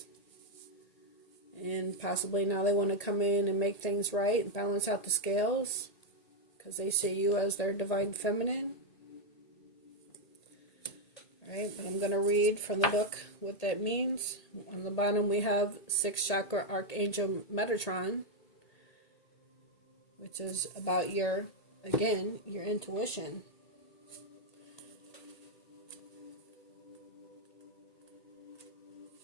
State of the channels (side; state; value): right; late; 1.8 ms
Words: And possibly now they want to come in and make things right and balance out the scales, because they see you as their divine feminine. Alright, but I'm going to read from the book what that means. On the bottom we have 6th chakra Archangel Metatron, which is about your intuition.